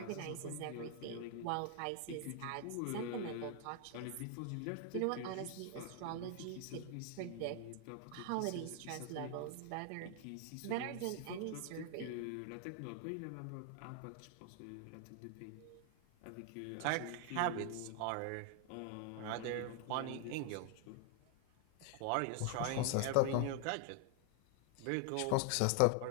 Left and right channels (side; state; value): both; different; correlation 0.00